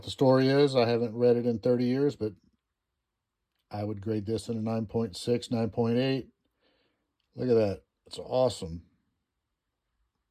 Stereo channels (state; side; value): identical; both; correlation 1.00